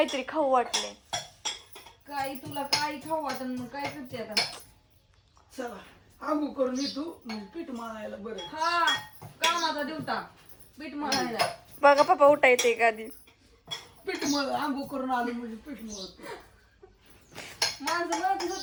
खाऊ वाटले. काही तुला काही खाऊ वाटन मग काय करते आता. चला आंघोळ करून येतो मग पीठ मळायला. बरं हा कामाचा दिवटा पीठ मळायला. बघा पप्पा उठा येते का आधी. पीठ मळ आंघोळ करून आलो म्हणजे पीठ मळतो. माणसं म्हणत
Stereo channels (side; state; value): both; identical; correlation 1.00